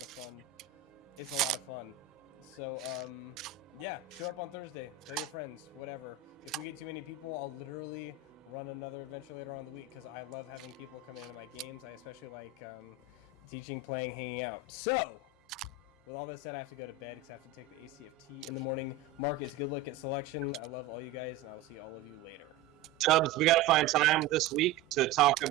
of fun. It's a lot of fun. So, yeah, show up on Thursday. Tell your friends, whatever. If we get too many people, I'll literally run another adventure later on in the week because I love having people come into my games. I especially like teaching, playing, hanging out. So, with all that said, I have to go to bed because I have to take the ACFT in the morning. Marcus, good luck at selection. I love all you guys, and I will see all of you later. Tubbs, we got to find time this week to talk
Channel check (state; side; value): quieter; left; 5.9 dB